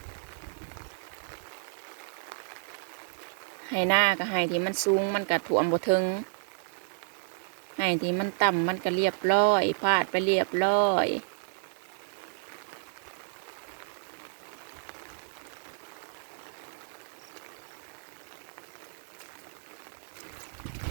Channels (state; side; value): silent; left; digital silence